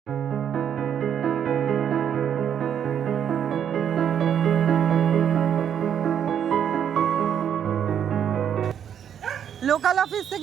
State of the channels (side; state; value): left; quieter; 8.8 dB